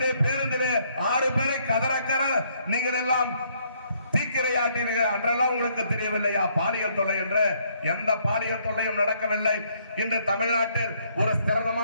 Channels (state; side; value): inverted; both; correlation -0.68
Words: பேருந்திலே 6 பேரை கதறக்கற நீங்கள் எல்லாம் தீக்கிரையாட்டீர்கள். அன்றெல்லாம் உங்களுக்கு தெரியவில்லையா பாலியல் தொல்லை என்று? எந்த பாலியல் தொல்லையும் நடக்கவில்லை. இன்று தமிழ்நாட்டில் ஒரு